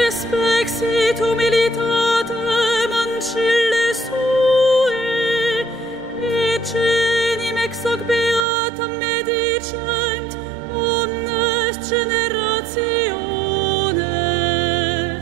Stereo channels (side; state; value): left; drops out; at 8.5 s